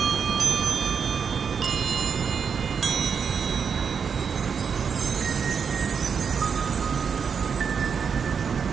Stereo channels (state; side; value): quieter; left; 6.4 dB